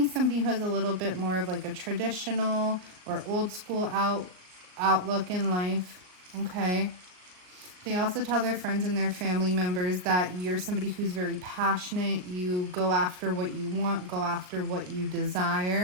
somebody who has a little bit more of like a traditional or old school outlook in life. Okay. They also tell their friends and their family members that you're somebody who's very passionate. You go after what you want, go after what you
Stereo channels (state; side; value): late; left; 38 ms